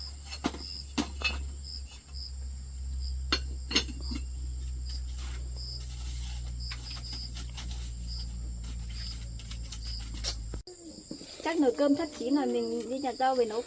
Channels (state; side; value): identical; both; correlation 1.00